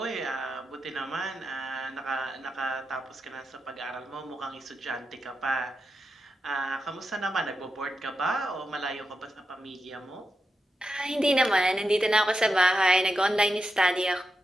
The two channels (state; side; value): normal; both; correlation 0.88